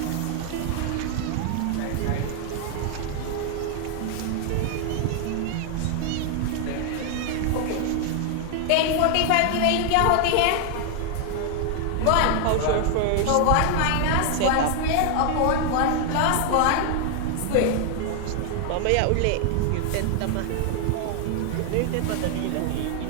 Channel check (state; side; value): different; both; correlation 0.00